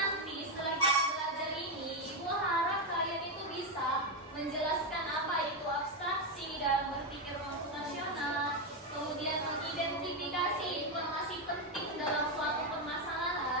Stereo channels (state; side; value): normal; both; correlation 0.06